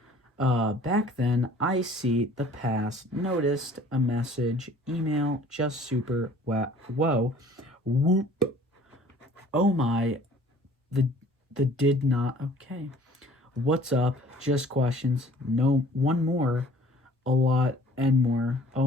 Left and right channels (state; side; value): normal; both; correlation 0.52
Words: Back then, I see the past, noticed a message, email, just super, whoa, whoop, oh my, the did not, okay. What's up, just questions, no, one more, a lot, and more,